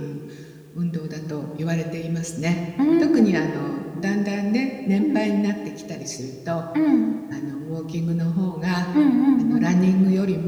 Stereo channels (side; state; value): both; identical; correlation 1.00